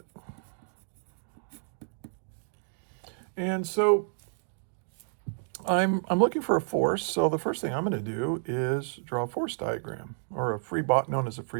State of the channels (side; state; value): left; silent; digital silence